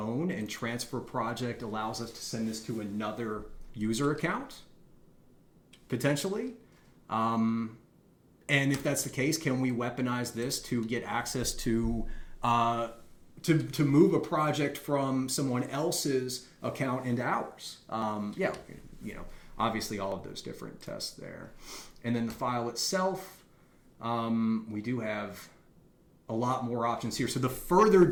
and transfer project allows us to send this to another user account, potentially. And if that's the case, can we weaponize this to get access to move a project from someone else's account into ours? Yeah, obviously all of those different tests there. And then the file itself, we do have a lot more options here. So the further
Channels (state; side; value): identical; both; correlation 1.00